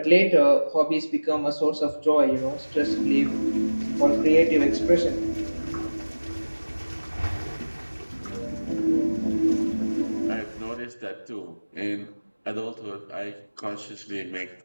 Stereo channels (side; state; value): both; inverted; correlation -1.00